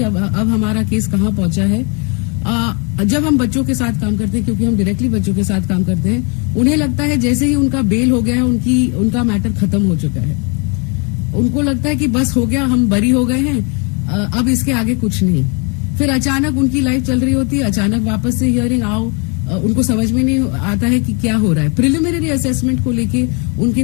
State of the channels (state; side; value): quieter; right; 33.9 dB